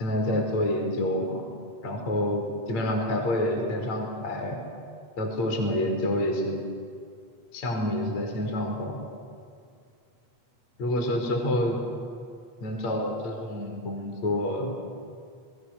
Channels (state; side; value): late; right; 8.2 ms